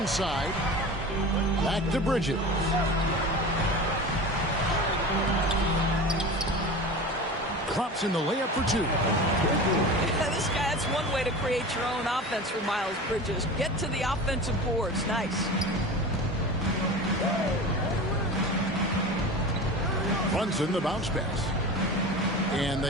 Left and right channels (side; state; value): both; normal; correlation 0.32